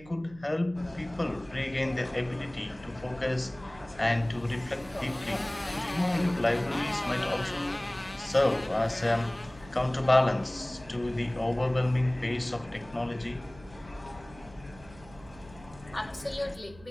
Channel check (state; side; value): noise; right; hum, 21 dB below the sound